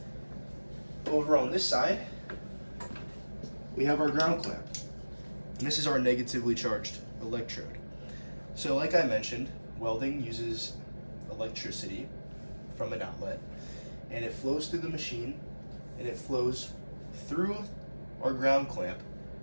Over on this side, we have our ground clamp. And this is our negatively charged electrode. So like I mentioned, welding uses electricity from an outlet, and it flows through the machine, and it flows through our ground clamp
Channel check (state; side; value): inverted; both; correlation -1.00